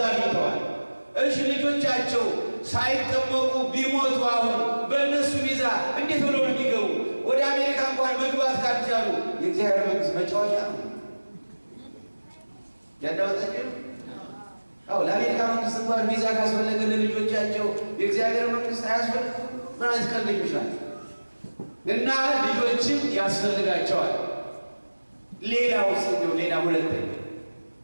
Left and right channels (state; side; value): inverted; both; correlation -1.00